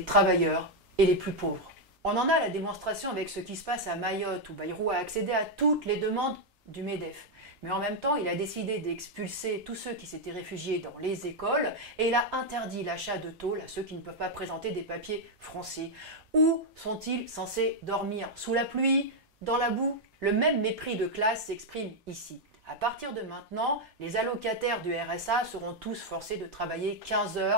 travailleurs et les plus pauvres. On en a la démonstration avec ce qui se passe à Mayotte, où Bayrou a accédé à toutes les demandes du MEDEF. Mais en même temps, il a décidé d'expulser tous ceux qui s'étaient réfugiés dans les écoles et il a interdit l'achat de tôles à ceux qui ne peuvent pas présenter des papiers français. Où sont-ils censés dormir? Sous la pluie? Dans la boue? Le même mépris de classe s'exprime ici. À partir de maintenant, les allocataires du RSA seront tous forcés de travailler 15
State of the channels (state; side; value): normal; both; correlation 0.00